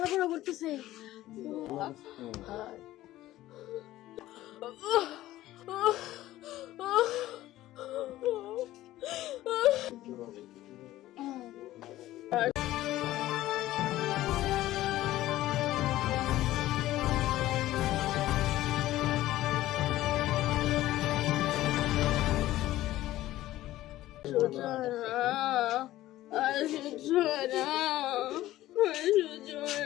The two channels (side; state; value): right; quieter; 15.3 dB